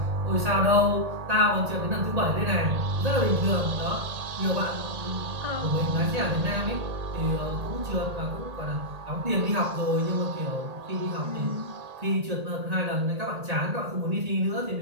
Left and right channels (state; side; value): late; left; 1.8 ms